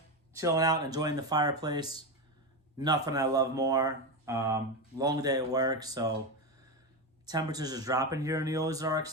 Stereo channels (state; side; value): normal; both; correlation 0.14